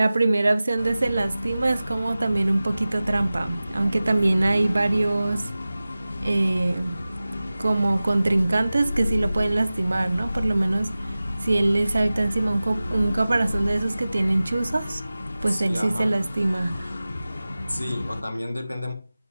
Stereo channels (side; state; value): both; inverted; correlation -0.97